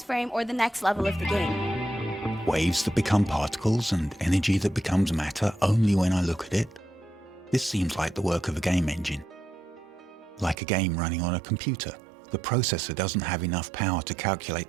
frame or the next level of the game. Waves that become particles and energy that becomes matter only when I look at it. This seems like the work of a game engine. Like a game running on a computer, the processor doesn't have enough power to calculate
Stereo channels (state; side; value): drops out; left; at 10.6 s